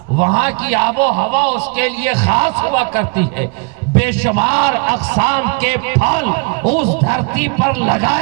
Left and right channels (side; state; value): left; quieter; 32.1 dB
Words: وہاں کی آب و ہوا اس کے لیے خاص ہوا کرتی ہے۔ بے شمار اقسام کے پھل اس دھرتی پر